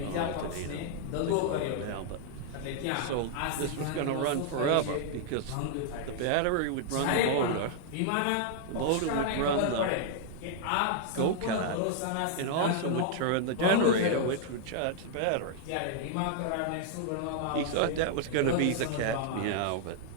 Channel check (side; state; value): both; different; correlation -0.01